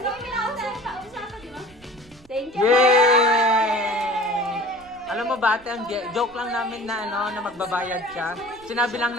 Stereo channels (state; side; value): noise; right; rumble, 26 dB below the sound